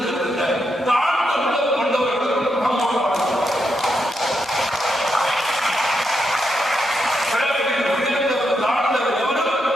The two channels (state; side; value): normal; both; correlation 0.83